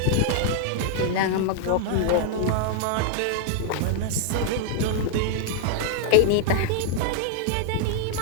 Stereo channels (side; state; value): both; different; correlation -0.01